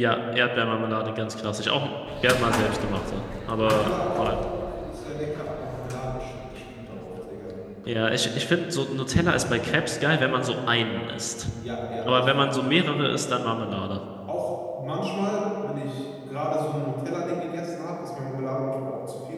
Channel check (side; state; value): both; identical; correlation 1.00